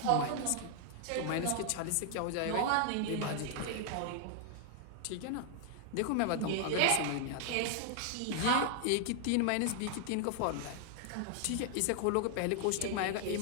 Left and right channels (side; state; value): both; different; correlation 0.00